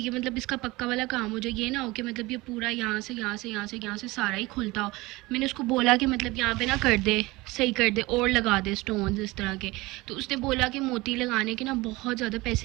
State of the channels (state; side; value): quieter; left; 21.4 dB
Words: मतलब इसका पक्का वाला काम हो जाए, ये ना हो कि मतलब ये पूरा यहाँ से सारा ही खुलता हो। मैंने उसको बोला कि मतलब यहाँ पे ना कर दे, सही कर दे और लगा दे स्टोन्स इस तरह के। तो उसने बोला कि मोती लगाने के ना बहुत ज़्यादा